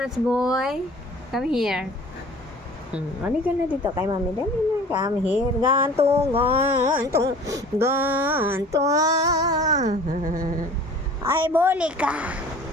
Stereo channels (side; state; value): both; normal; correlation 0.46